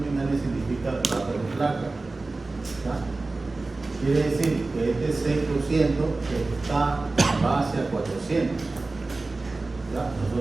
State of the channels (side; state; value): left; quieter; 3.4 dB